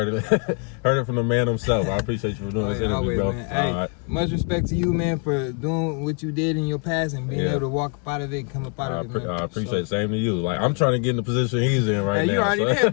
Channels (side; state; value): right; quieter; 38.5 dB